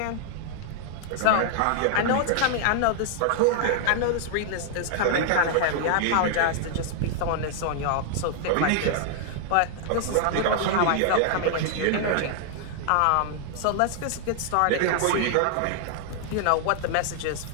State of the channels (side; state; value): both; different; correlation 0.00